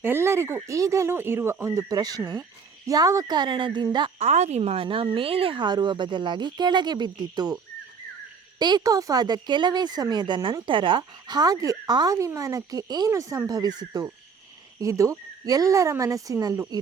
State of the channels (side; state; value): left; quieter; 5.7 dB